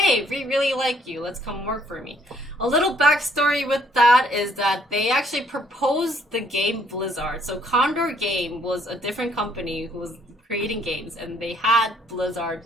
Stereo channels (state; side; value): normal; both; correlation 0.66